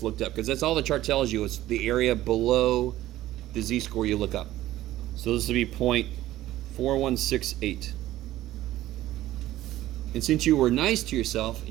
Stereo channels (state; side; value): quieter; left; 14.8 dB